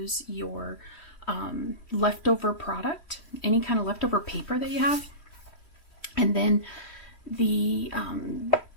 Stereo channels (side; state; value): right; late; 3.1 ms